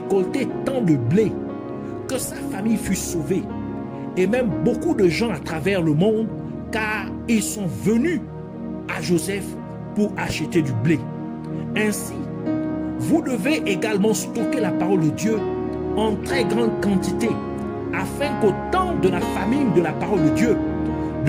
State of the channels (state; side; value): identical; both; correlation 1.00